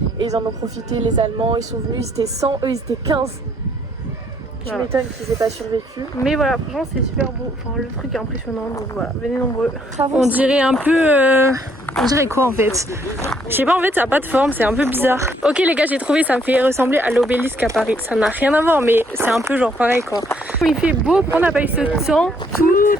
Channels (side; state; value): both; normal; correlation 0.67